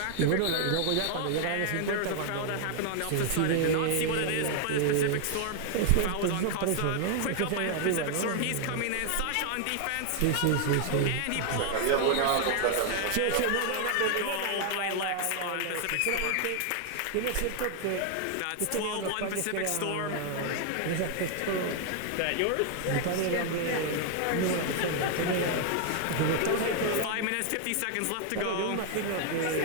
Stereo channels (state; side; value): different; both; correlation 0.00